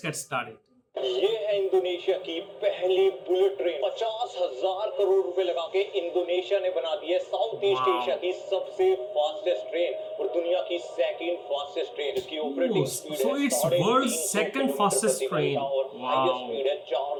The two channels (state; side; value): identical; both; correlation 1.00